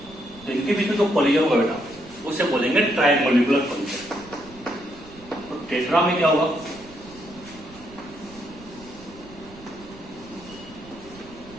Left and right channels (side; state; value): right; noise; rumble, 21 dB below the sound